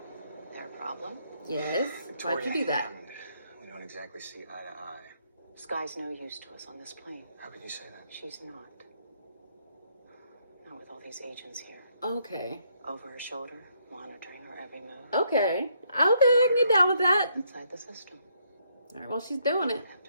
Their problem? Yes. Why'd you do that? We don't exactly see eye to eye. Sky's no use to us on this plane. How can you say that? She's not. Not with all these agents here. Okay. Over her shoulder, monitoring her every move. Okay. Okay, I can get down with that. Inside the system. All right, well, she's doing it. I have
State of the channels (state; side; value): inverted; both; correlation -0.72